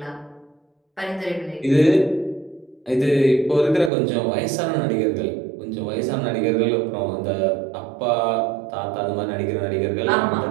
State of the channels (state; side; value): drops out; left; at 3.9 s